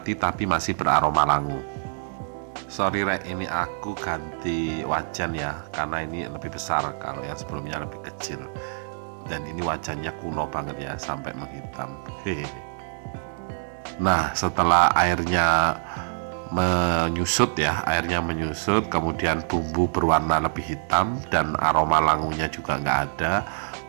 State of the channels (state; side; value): silent; left; 61 dB below the other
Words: tapi masih beraroma langu. Sorry Rek, ini aku ganti wajan ya, karena ini lebih besar, kalau yang sebelumnya lebih kecil. Dan ini wajannya kuno banget ya, sampai menghitam. Nah, setelah airnya menyusut ya, kemudian bumbu berwarna lebih hitam dan aroma langunya juga nggak ada,